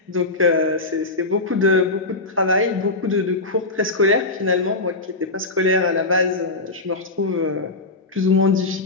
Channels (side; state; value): right; quieter; 3.1 dB